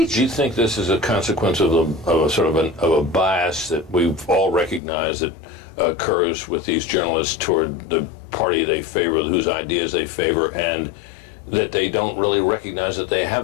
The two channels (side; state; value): right; drops out; at 4.8 s